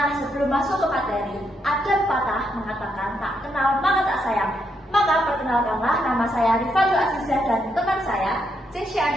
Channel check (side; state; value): both; normal; correlation 0.78